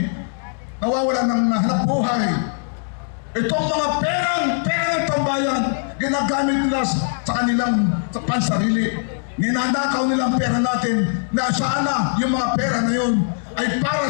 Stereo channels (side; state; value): right; silent; digital silence